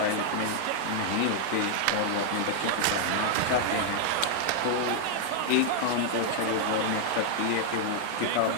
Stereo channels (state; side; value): different; both; correlation -0.01